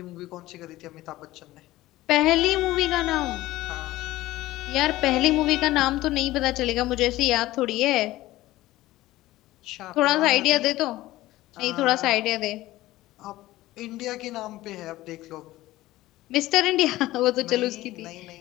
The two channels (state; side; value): quieter; right; 16.9 dB